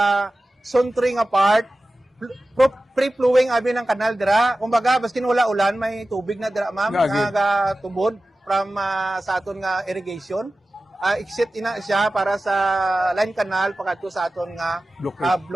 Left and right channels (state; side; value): normal; both; correlation 0.95